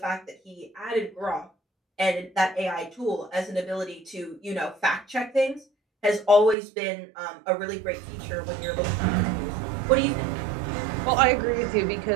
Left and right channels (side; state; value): left; drops out; at 6.6 s